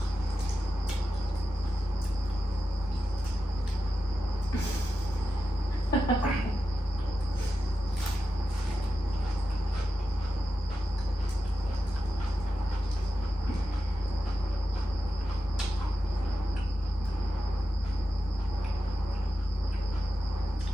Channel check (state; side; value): normal; both; correlation 0.91